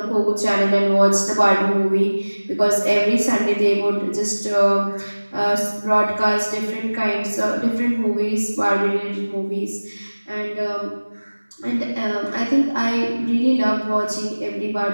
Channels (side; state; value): both; inverted; correlation -1.00